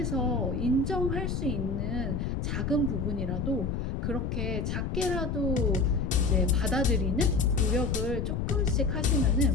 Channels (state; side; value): noise; left; rumble, 2 dB below the sound